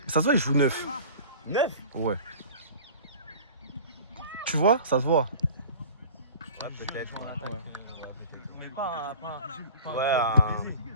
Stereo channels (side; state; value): both; inverted; correlation -0.41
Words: Ça se voit, il joue 9. 9. Ouais. Tu vois? Ça se voit. Ouais, peut-être.